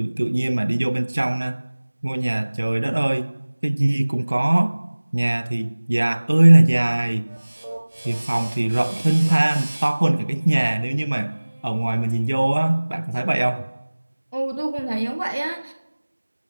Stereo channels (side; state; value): both; inverted; correlation -1.00